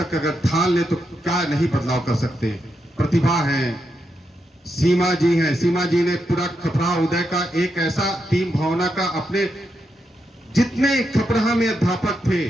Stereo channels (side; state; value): both; normal; correlation 0.84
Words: अगर ठान ले तो क्या नहीं बदलाव कर सकते। प्रतिभा है, सीमा जी हैं, सीमा जी ने पूरा खपराहा उदय का एक ऐसा टीम भावना का, अपने जितने खपराहा में अध्यापक थे,